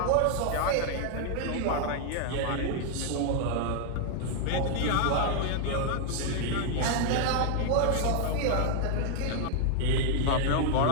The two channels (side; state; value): both; different; correlation 0.00